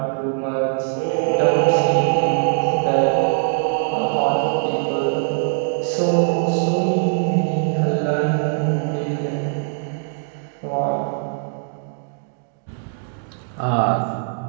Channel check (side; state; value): left; silent; digital silence